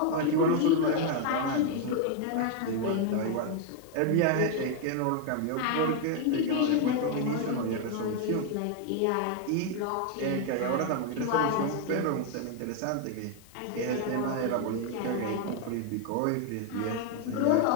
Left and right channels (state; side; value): different; both; correlation 0.01